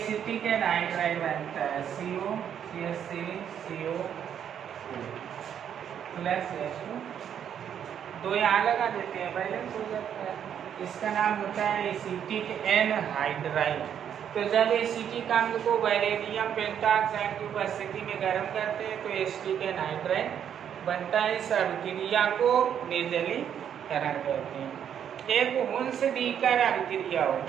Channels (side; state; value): left; quieter; 8.9 dB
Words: एनहाइड्राइड बनता है, COCH3CO प्लस H2, दो यहाँ लगा देते हैं, बैलेंस हो जाता है। इसका नाम होता है एसिटिक एनहाइड्राइड। तो जब एसिटिक अम्ल को वैलेडियम पेंटाऑक्साइड की उपस्थिति में गर्म करते हैं तो एसिटिक एनहाइड्राइड बनता है। इस अभिक्रिया को निर्जलीकरण कहते हैं। एक हुंस-डीकर अभिक्रिया